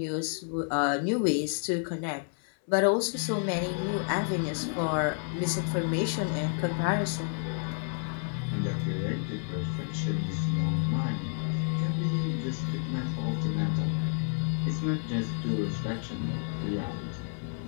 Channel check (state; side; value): silent; right; 58 dB below the other